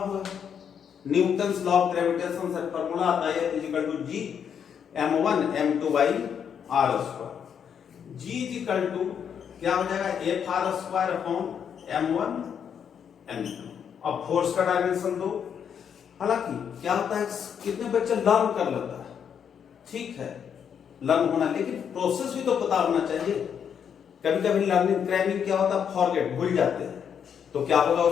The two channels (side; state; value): right; quieter; 7.9 dB